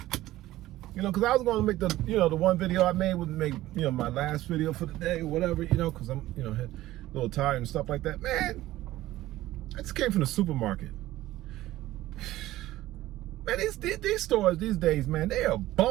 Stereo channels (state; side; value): quieter; left; 15.7 dB